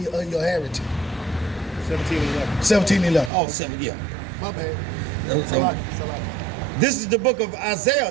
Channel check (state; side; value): drops out; left; at 3.3 s